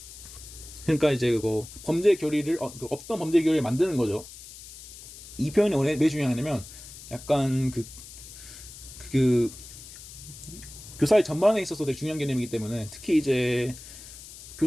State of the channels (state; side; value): noise; left; hiss, 16 dB below the sound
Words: 그러니까 이제 그거 범죄 결의를 없던 범죄 결의를 만드는 거죠. 이 표현이 왜 중요하냐면 약간 그 교사의 전반에 있어서 되게 중요한 개념이기 때문에, 특히 이제